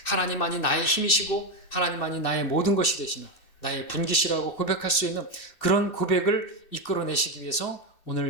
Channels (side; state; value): right; late; 2.6 ms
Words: 하나님만이 나의 힘이시고 하나님만이 나의 모든 것이 되시는, 나의 분깃이라고 고백할 수 있는 그런 고백을 이끌어내시기 위해서